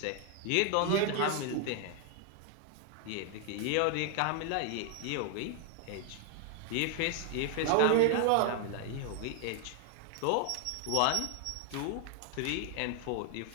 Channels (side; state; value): both; different; correlation 0.00